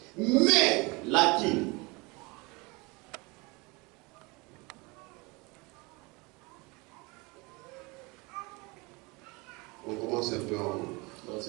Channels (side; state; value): left; quieter; 26.5 dB